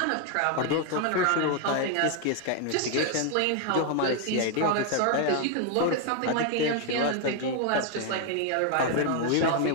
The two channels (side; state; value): both; different; correlation 0.01